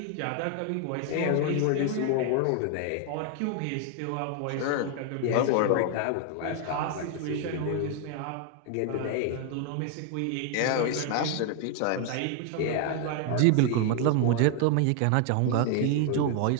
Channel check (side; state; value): both; different; correlation 0.00